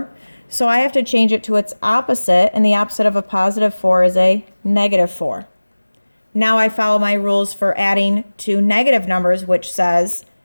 So I have to change it to its opposite, and the opposite of a +4 is a -4. Now I follow my rules for adding to negative numbers, which says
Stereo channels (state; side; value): inverted; both; correlation -1.00